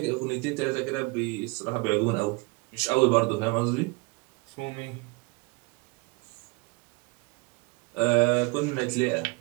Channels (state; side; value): quieter; left; 27.0 dB